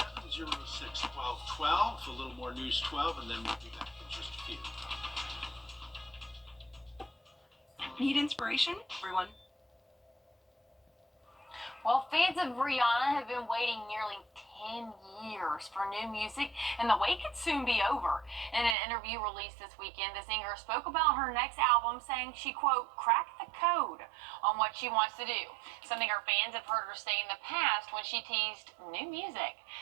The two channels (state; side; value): drops out; left; at 18.8 s